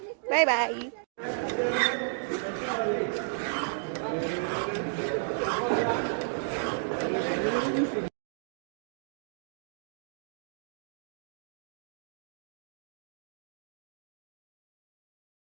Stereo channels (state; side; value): silent; left; digital silence